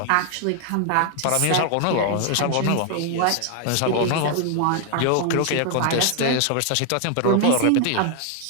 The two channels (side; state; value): both; different; correlation 0.00